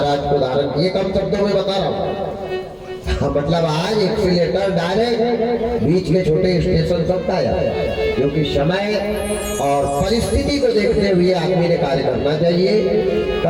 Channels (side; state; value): both; identical; correlation 1.00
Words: को धारण किए। कम शब्दों में बता रहा हूँ। मतलब आज एक से लेकर डायरेक्ट बीच के छोटे स्टेशन तक आया, क्योंकि समय और परिस्थिति को देखते हुए आदमी ने कार्य करना चाहिए।